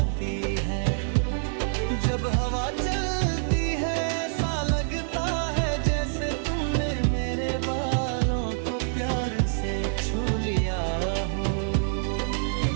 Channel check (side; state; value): left; silent; digital silence